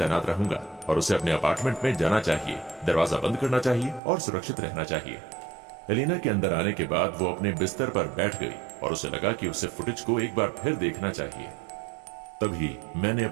रहूंगा और उसे अपने अपार्टमेंट में जाना चाहिए, दरवाजा बंद करना चाहिए और सुरक्षित रहना चाहिए। एलेना के अंदर आने के बाद वो अपने बिस्तर पर बैठ गई और उसे लगा कि उसे फुटेज को एक बार फिर देखना चाहिए। तभी मैंने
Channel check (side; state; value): left; drops out; at 4.0 s